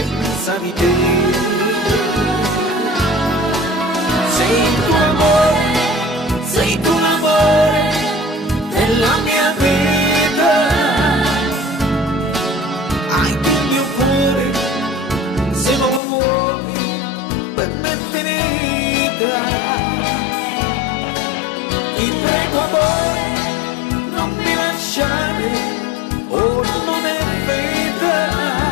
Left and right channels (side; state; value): right; drops out; at 16.0 s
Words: di te. Sei il tuo amore, sei tu l'amore della mia vita, hai tu il mio cuore, se non lo vuoi per me è finita. Ti prego amore, non mi lasciare, ora non è vita,